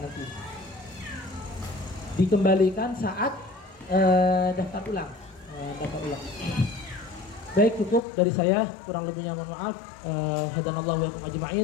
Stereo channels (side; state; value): right; drops out; at 8.0 s